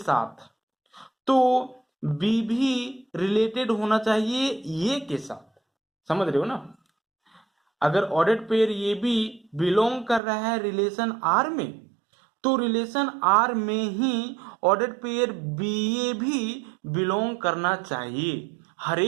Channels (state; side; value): drops out; left; at 10.2 s